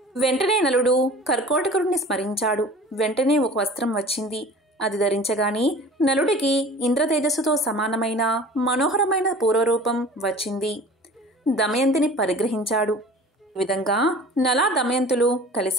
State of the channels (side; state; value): both; normal; correlation 0.43